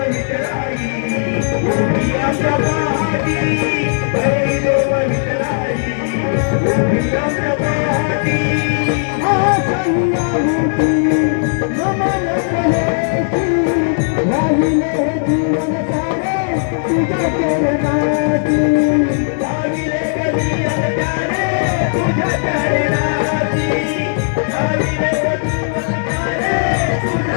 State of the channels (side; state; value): right; silent; digital silence